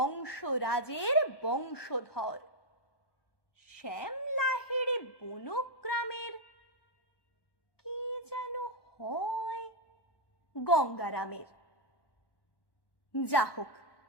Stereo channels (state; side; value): late; right; 1.1 ms